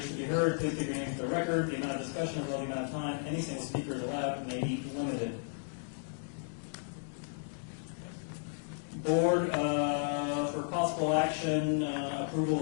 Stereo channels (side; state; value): right; silent; digital silence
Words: to be heard, please give your name for the record. The amount of discussion as well as the amount of time any single speaker is allowed may be limited. Board, for possible action, approval